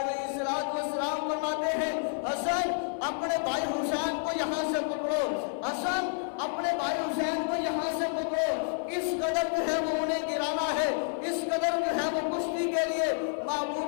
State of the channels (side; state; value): right; silent; 58 dB below the other